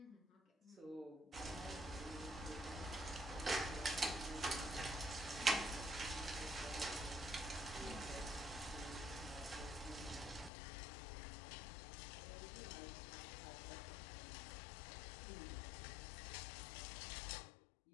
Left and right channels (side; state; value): right; drops out; at 10.5 s